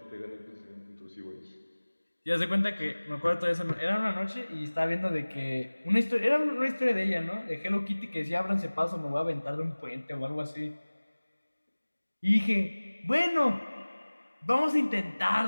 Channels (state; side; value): inverted; both; correlation -1.00